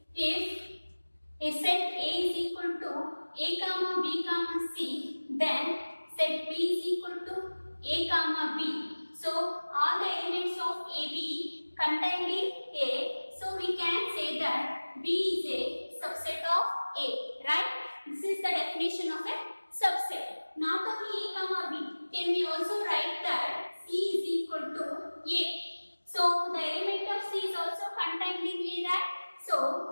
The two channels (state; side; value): inverted; both; correlation -1.00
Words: if a set A is equal to A comma B comma C, then set B is equal to A comma B. So all the elements of AB contained in A. So we can say that B is a subset of A, right? This is the definition of a subset. Not only A comma B, can we also write that C is equal to A. So the element of C is also contained in A, right?